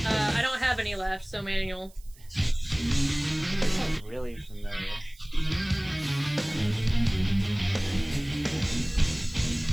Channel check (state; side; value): noise; right; hiss, 25 dB below the sound